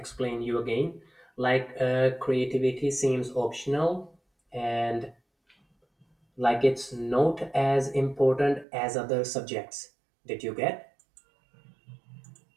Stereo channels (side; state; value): left; drops out; at 8.7 s